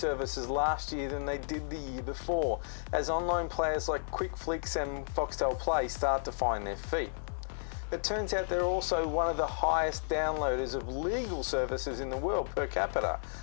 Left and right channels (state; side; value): silent; right; 56 dB below the other